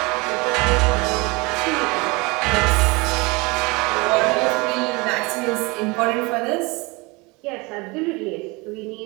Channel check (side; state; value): left; quieter; 25.9 dB